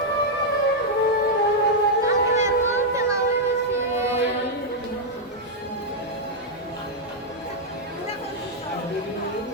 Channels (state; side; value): normal; both; correlation -0.03